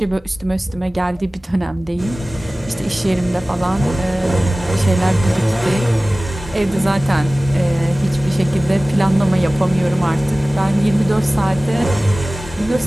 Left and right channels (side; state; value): both; normal; correlation 0.97